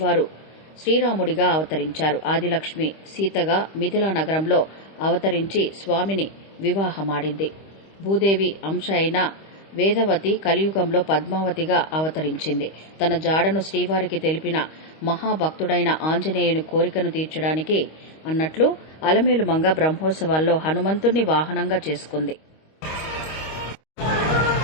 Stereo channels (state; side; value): late; right; 25 ms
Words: శ్రీరాముడిగా అవతరించారు. ఆదిలక్ష్మి సీతగా మిథిలా నగరంలో అవతరించి స్వామిని వివాహమాడింది. భూదేవి అంశ అయిన వేదవతి కలియుగంలో పద్మావతిగా అవతరించింది. తన జాడను శ్రీవారికి తెలిపిన మహాభక్తుడైన ఆంజనేయుని కోరికను తీర్చడానికి అన్నట్లు అలమేలుమంగ బ్రహ్మోత్సవాల్లో హనుమంతుణ్ణి వాహనంగా చేసుకుంది.